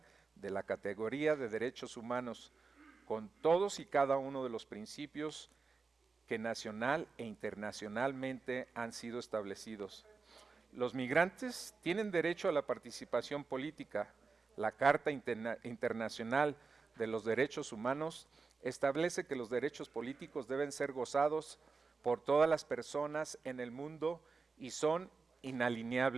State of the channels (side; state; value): left; quieter; 4.5 dB